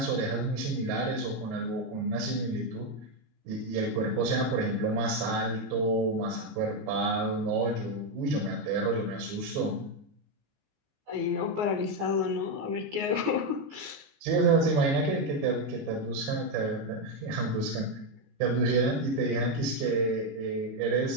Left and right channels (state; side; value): late; left; 15 ms